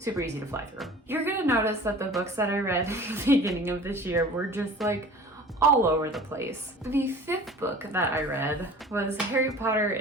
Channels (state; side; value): normal; both; correlation 0.43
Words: easy to fly through. You're gonna notice that the books that I read at the beginning of this year were just like all over the place. The fifth book that I read was Harry Potter